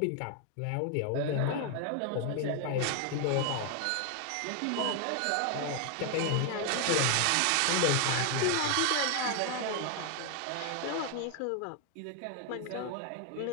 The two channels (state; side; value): different; both; correlation 0.00